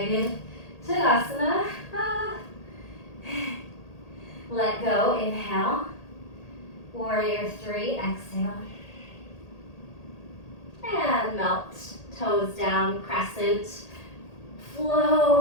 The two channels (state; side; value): late; right; 1.8 ms